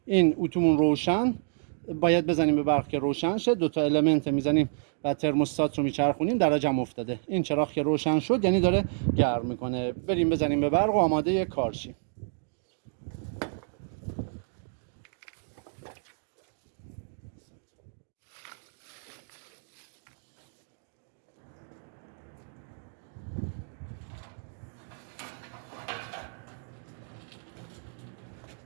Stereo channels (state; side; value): silent; left; digital silence